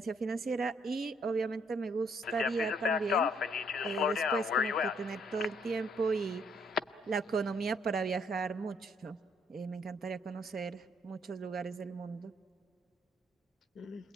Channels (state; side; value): normal; both; correlation 0.68